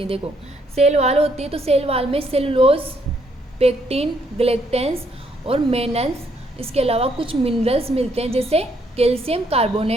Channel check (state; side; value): normal; both; correlation 0.71